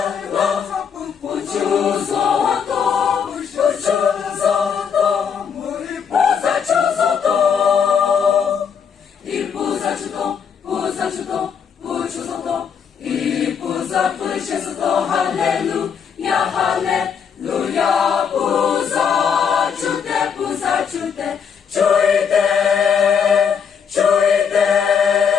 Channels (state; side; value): quieter; right; 7.0 dB